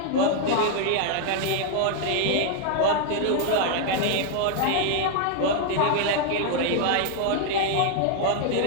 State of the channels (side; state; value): both; different; correlation 0.00